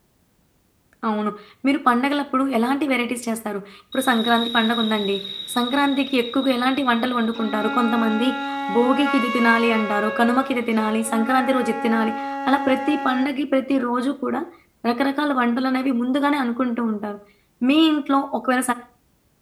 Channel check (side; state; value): both; identical; correlation 1.00